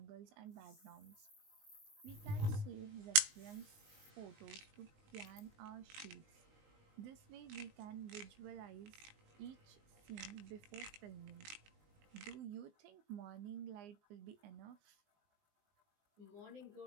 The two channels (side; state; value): left; late; 19 ms